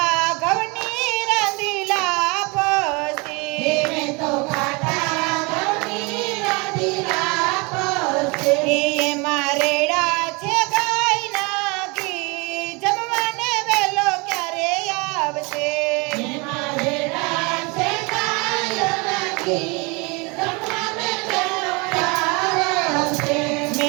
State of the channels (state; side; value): quieter; left; 28.2 dB